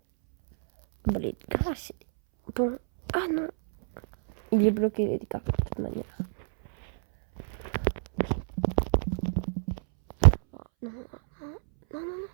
Bon, les dégâts, c'est. Bon. Ah non. Il est bloqué, les dégâts, de toute manière. Oh, non.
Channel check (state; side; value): silent; left; 60 dB below the other